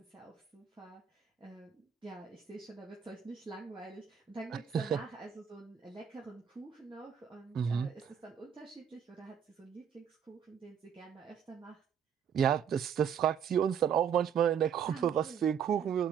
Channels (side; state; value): left; quieter; 8.0 dB